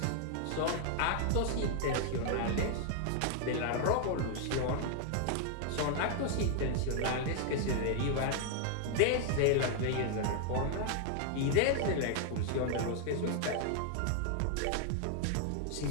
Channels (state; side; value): different; both; correlation 0.00